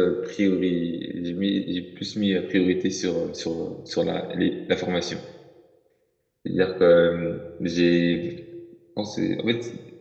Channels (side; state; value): both; identical; correlation 1.00